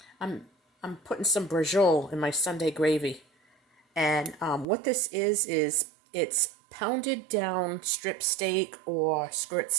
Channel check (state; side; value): drops out; left; at 4.7 s